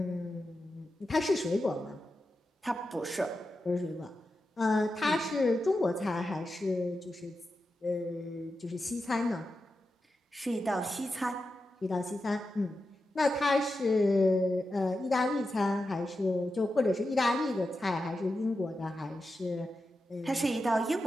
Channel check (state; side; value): normal; both; correlation 0.90